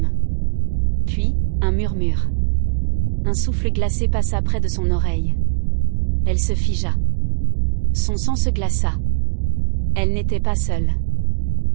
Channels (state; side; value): silent; left; digital silence